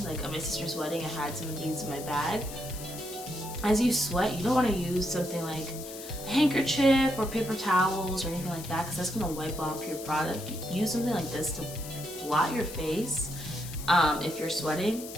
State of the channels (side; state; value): left; noise; hiss, 12 dB below the sound